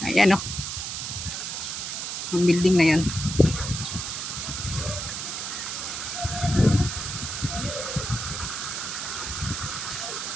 Ayan yung building na yan.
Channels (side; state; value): right; noise; hiss, 4 dB below the sound